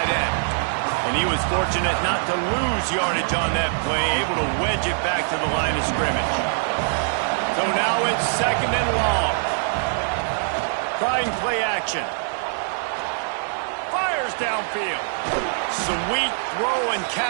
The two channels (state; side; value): silent; left; digital silence